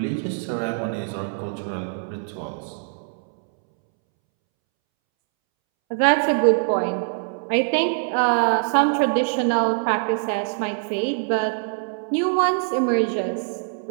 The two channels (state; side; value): silent; left; 63 dB below the other